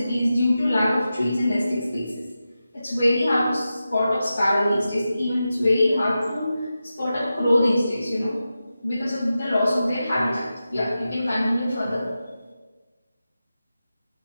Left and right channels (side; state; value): both; inverted; correlation -0.92